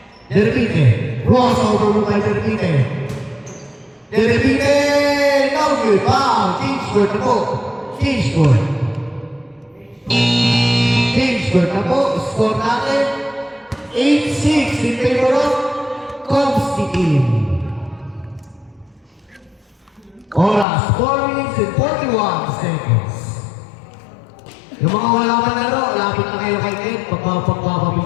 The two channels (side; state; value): right; drops out; at 20.7 s